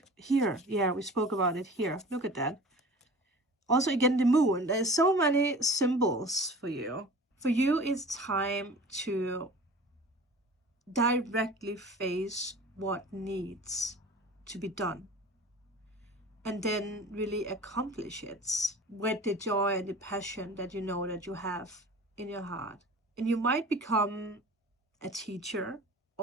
here. Yeah, we spoke about it here. Look at that. Also, again, the moon. There's so many symbols for you. For you, it's time to directly face what needs to be done, and then really accomplish it with the joy and the passion that you know that you have in your heart. And you might become a teacher,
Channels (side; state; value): both; normal; correlation 0.41